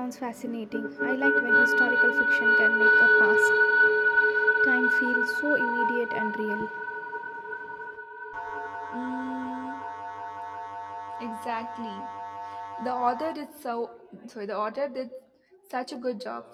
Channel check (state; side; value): identical; both; correlation 1.00